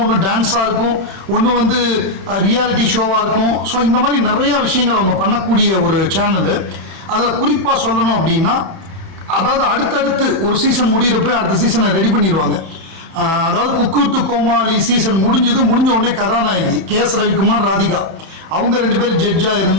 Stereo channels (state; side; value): late; left; 30 ms